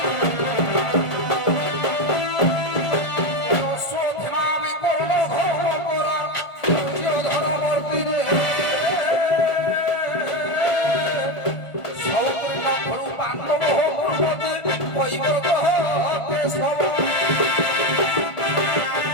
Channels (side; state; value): right; late; 1.5 ms